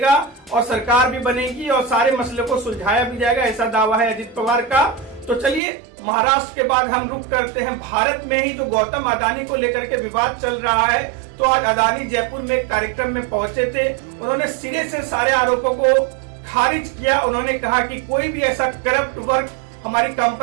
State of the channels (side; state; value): left; drops out; at 5.6 s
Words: और सरकार भी बनेगी और सारे मसले को सुलझाया भी जाएगा, ऐसा दावा है अजित पवार का। तो चलिए महाराष्ट्र के बाद हम रुक करते हैं भारत में ही। तो गौतम अदानी को लेकर के विवाद चल रहा है। तो आज अदानी जयपुर में एक कार्यक्रम में पहुंचे थे। उन्होंने सिरे से सारे आरोपों को खारिज किया। उन्होंने कहा कि कोई भी ऐसा करप्ट वर्क हमारी